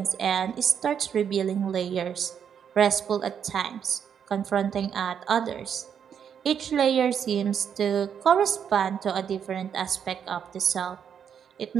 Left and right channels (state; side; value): quieter; left; 8.0 dB